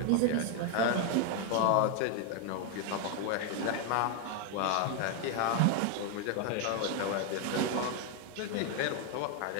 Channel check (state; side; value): different; both; correlation 0.01